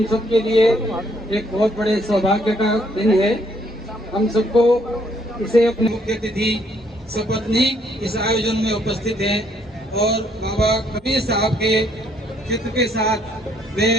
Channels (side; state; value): both; normal; correlation 0.68